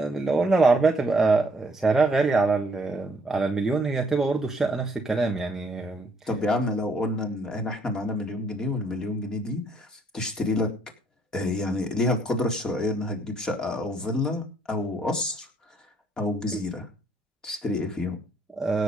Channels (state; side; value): normal; both; correlation 0.67